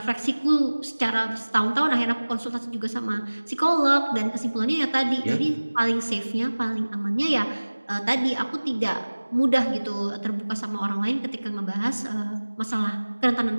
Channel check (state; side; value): inverted; both; correlation -1.00